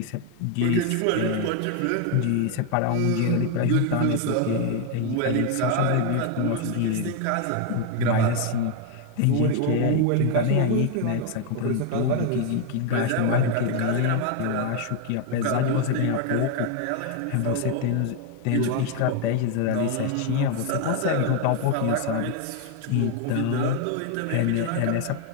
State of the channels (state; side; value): different; both; correlation 0.01